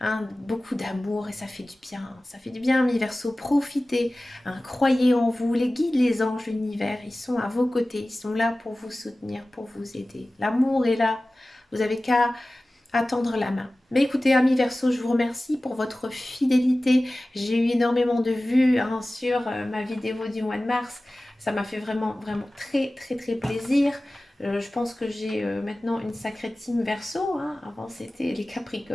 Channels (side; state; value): both; normal; correlation 0.97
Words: beaucoup d'amour et ça fait du bien. Ça fait du bien, mes Verseaux. Profitez, hein, croyez en vous. Les guides, les anges, l'univers, ils sont à vos côtés. Ils sont là pour vous soutenir, pour vous aider. L'amour est là. Vous avez qu'à à tendre la main. Mais écoutez, amis Verseau, je vous remercie pour votre fidélité. J'ai eu énormément de vues sur ma vidéo du mois de mars. Ça m'a fait vraiment, vraiment très, très, très plaisir. Je pense que j'ai maintenant une sacrée team Verseau, hein. Avant, c'était les